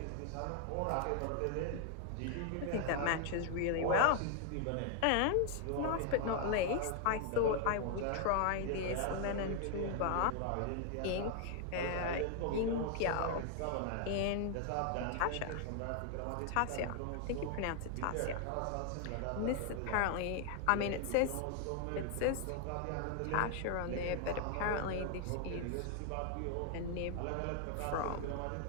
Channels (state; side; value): different; both; correlation 0.00